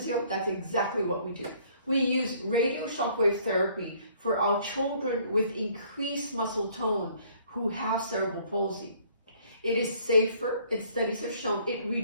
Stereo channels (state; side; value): inverted; both; correlation -0.60